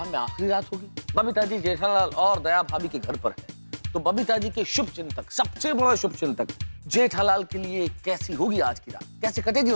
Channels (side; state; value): both; inverted; correlation -1.00